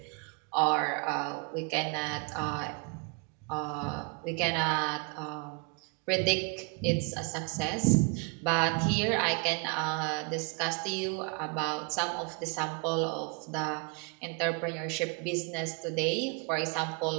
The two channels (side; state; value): left; quieter; 33.2 dB